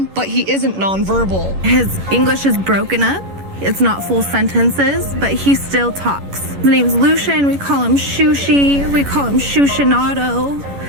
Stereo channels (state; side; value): late; left; 11 ms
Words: but he isn't nonverbal. His English is broken up. It's not full sentences, but he still talks. His name's Lucian. We call him Shushi. We call him Shushinato.